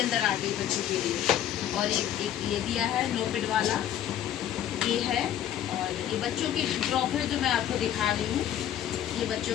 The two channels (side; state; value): right; quieter; 11.0 dB